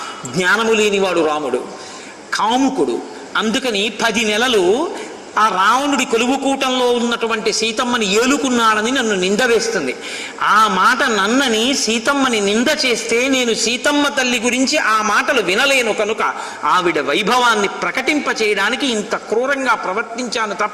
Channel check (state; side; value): identical; both; correlation 1.00